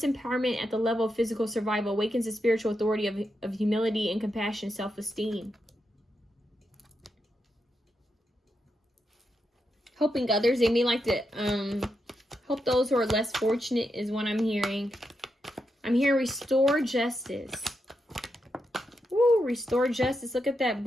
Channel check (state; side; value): normal; both; correlation 0.85